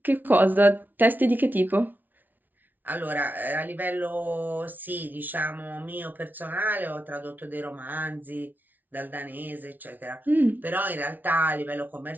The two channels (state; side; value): late; left; 0.083 ms